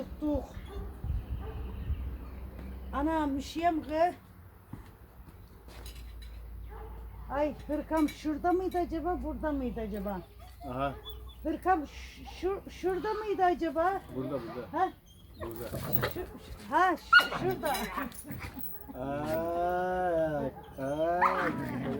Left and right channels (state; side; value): identical; both; correlation 1.00